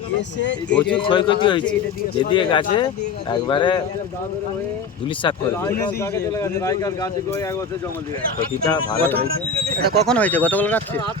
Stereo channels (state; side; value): quieter; right; 4.7 dB